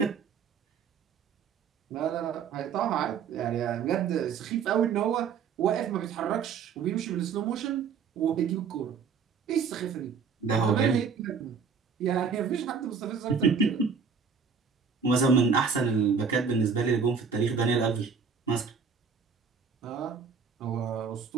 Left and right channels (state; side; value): quieter; left; 6.0 dB